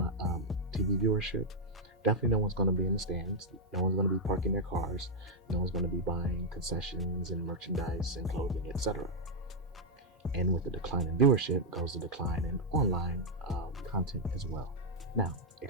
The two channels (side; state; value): both; normal; correlation -0.03